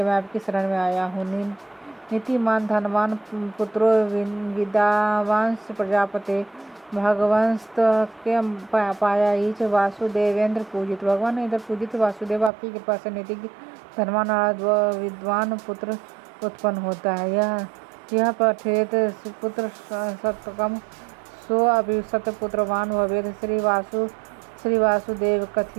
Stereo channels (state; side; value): drops out; left; at 12.5 s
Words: मैं आपकी शरण में आया हूँ। नीतिमान धनवान पुत्रो विद्यावांश प्रजापते भगवंस के पाया ईच वासुदेवेंद्र पूजित। भगवान इधर पूजित वासुदेव आपकी कृपा से नीतिज्ञ धनवान और विद्वान पुत्र उत्पन्न होता है। यह पठेत पुत्र सतकम सो अभिसत पुत्रवान भवेत। श्री वासुदेव